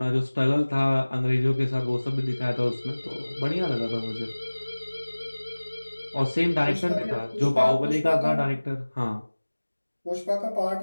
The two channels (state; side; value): inverted; both; correlation -1.00